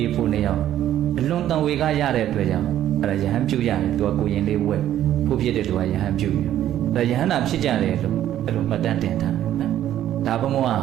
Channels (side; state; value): left; quieter; 11.9 dB